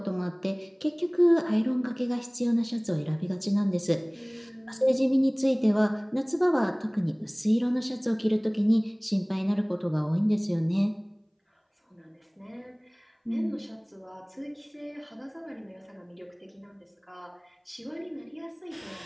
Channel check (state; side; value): identical; both; correlation 1.00